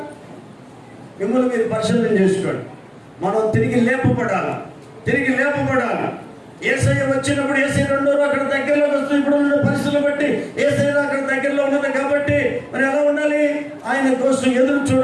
మిమ్మల్ని మీరు పరిశీలన చేసుకోండి. మనం తిరిగి లేపబడాలి. యేసయ్య వచ్చినప్పుడు యేసయ్య రెండో అక్కడ దగ్గరలో వస్తుంది. ఇప్పుడు ఉన్న పరిస్థితులు బట్టి యేసయ్య అక్కడ దగ్గరలో ఉన్నది కాబట్టి మరి ఎలా ఉండాలి? ఆయన కోసం ఎదురు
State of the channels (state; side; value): identical; both; correlation 1.00